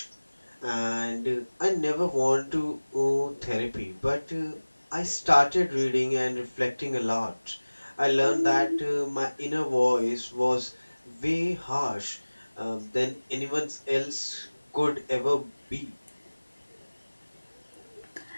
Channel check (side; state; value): both; inverted; correlation -1.00